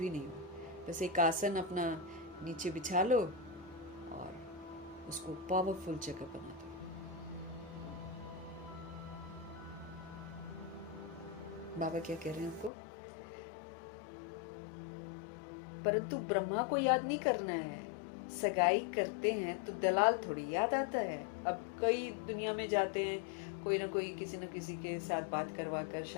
नहीं हो, बस एक आसन अपना नीचे बिछा लो और उसको पावरफुल जगह बना दो। बाबा क्या कह रहे हैं आपको? परंतु ब्रह्मा को याद नहीं करना है। सगाई करते हैं तो दलाल थोड़ी याद आता है। अब कई दुनिया में जाते हैं, कोई ना कोई किसी न किसी के साथ बात करवा कर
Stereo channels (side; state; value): right; drops out; at 12.7 s